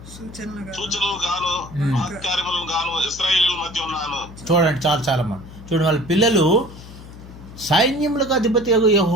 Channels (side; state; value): left; noise; hum, 16 dB below the sound